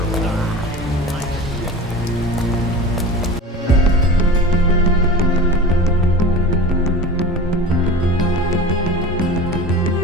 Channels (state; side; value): normal; both; correlation 0.35